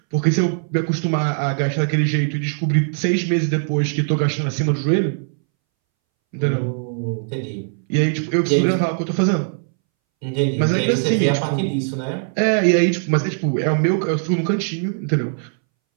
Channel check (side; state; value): left; silent; 64 dB below the other